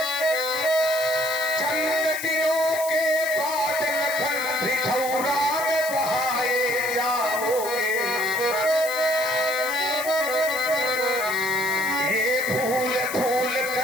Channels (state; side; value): noise; left; hiss, 9 dB below the sound